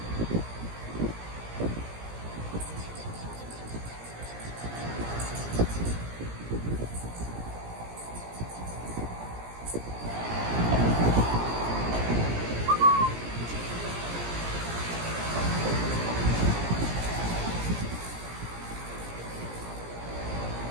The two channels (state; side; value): late; left; 17 ms